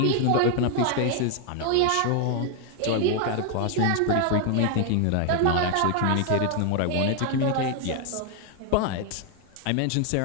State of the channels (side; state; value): both; different; correlation 0.00